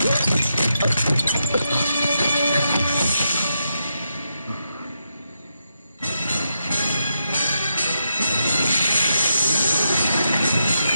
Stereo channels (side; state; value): both; inverted; correlation -0.84